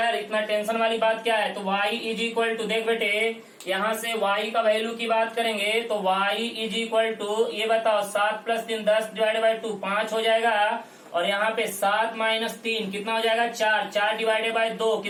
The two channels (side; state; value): both; identical; correlation 1.00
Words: इतना टेंशन वाली बात क्या है। तो y इज इक्वल टू देख बेटे यहाँ से y का वैल्यू की बात करेंगे तो y इज इक्वल टू ये बताओ 7 प्लस 3 10 डिवाइडेड बाई 2 5 हो जाएगा और यहाँ पे 7 माइनस 3 कितना हो जाएगा 4 डिवाइडेड बाई 2